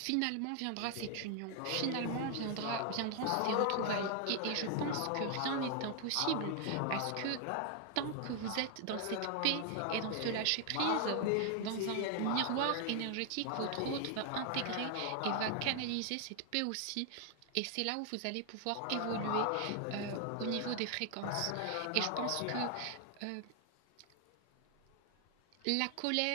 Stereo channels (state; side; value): different; both; correlation 0.00